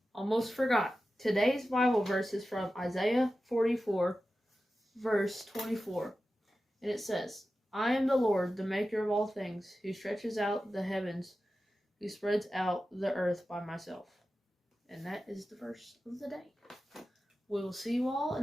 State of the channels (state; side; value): normal; both; correlation 0.93